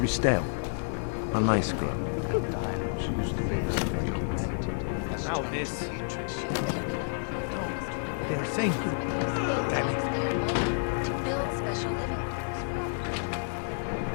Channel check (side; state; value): right; silent; 58 dB below the other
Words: A nice girl. She used to babysit my Now this. Oh no, they're saying to... Damn it.